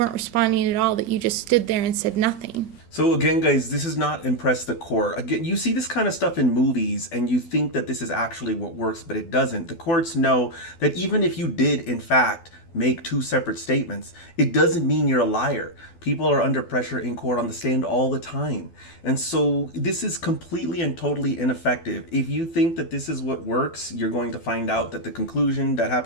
responding at all, that you just stood there and said nothing. So again, guys, this has not impressed the court. Again, you see this kind of stuff in movies and you think that this is actually what works, but it doesn't. The courts know that even if you did, in fact, make two separate statements, it doesn't mean you're a liar. People are under pressure in court on the stand all the time. And so this is completely and totally ineffective. If you think that this is what works, you're going to find out that the conclusion that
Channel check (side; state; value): right; late; 12 ms